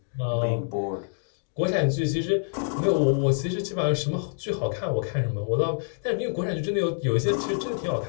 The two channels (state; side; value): silent; right; digital silence